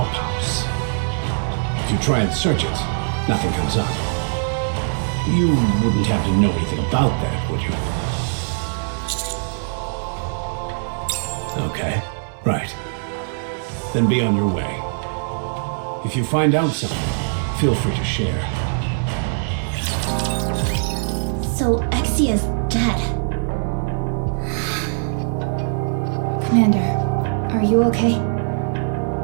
If you try and search it, nothing comes up. You wouldn't have to know anything about that, would you? Okay, right. Then be on your way. If you find out something, feel free to share. So Exia's dead. Commander, are you okay?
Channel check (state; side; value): silent; left; 65 dB below the other